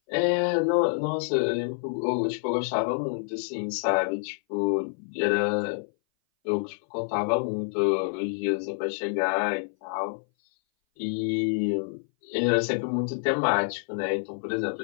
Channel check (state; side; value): silent; right; 58 dB below the other